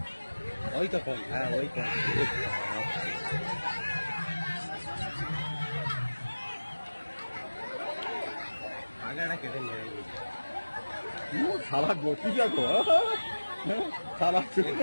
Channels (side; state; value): both; inverted; correlation -1.00